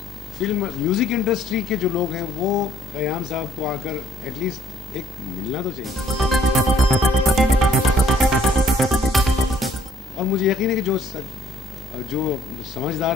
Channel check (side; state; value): both; normal; correlation 0.63